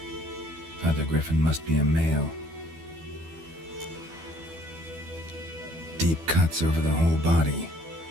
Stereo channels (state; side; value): late; left; 12 ms